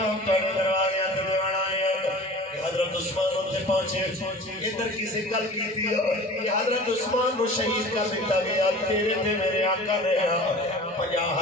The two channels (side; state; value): both; normal; correlation 0.41